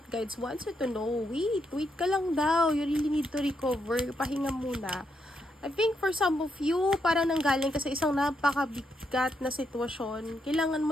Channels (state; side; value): normal; both; correlation 0.80